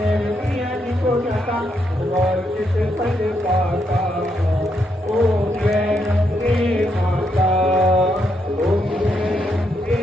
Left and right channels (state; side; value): normal; both; correlation 0.78